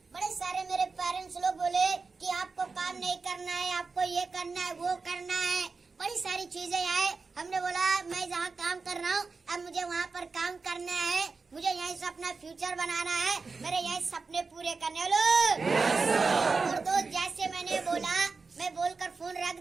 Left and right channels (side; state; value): left; quieter; 4.4 dB